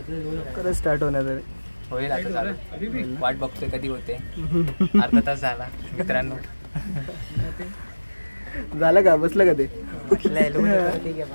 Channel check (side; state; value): both; inverted; correlation -1.00